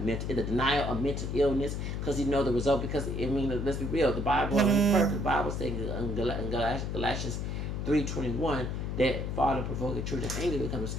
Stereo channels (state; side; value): noise; left; hum, 3 dB below the sound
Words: the denial of mental illness, because you know the result. Because I mean, let's be real, the Bible is perfect. The Bible says in Galatians 3:21 that father provoking children of anger become a